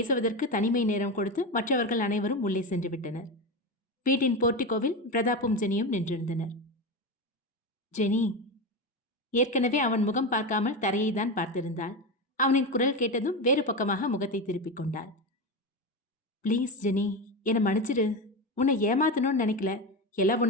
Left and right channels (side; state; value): both; normal; correlation 0.18